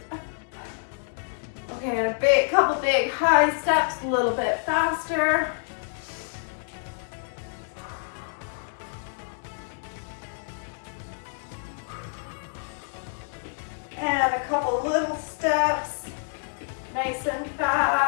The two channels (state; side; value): silent; right; digital silence